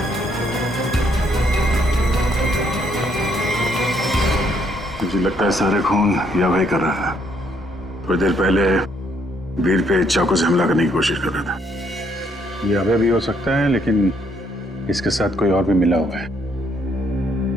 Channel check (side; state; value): both; normal; correlation 0.70